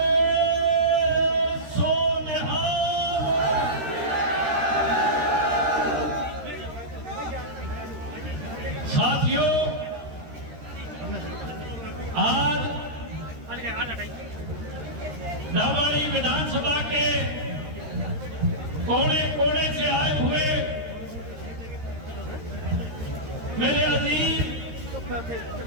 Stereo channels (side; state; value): left; late; 13 ms